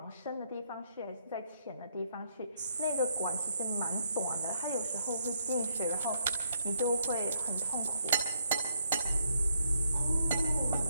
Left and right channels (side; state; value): both; inverted; correlation -0.74